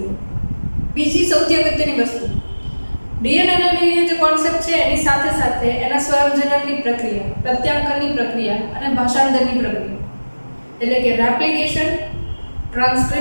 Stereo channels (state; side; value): inverted; both; correlation -1.00